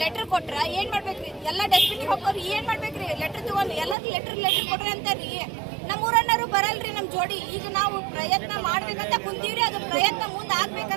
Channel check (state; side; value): drops out; left; at 4.0 s